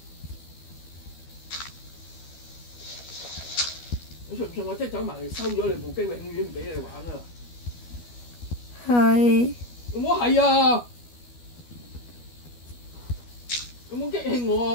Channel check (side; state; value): right; late; 12 ms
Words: 你信唔信我即係走埋嚟收咗你部機，永遠唔俾你玩啊！係。有冇係啊？有冇激氣